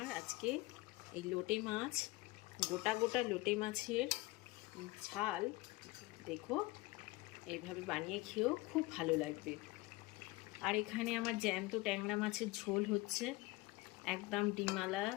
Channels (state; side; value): quieter; right; 21.0 dB